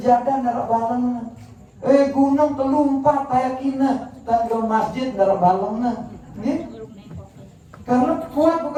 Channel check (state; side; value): identical; both; correlation 1.00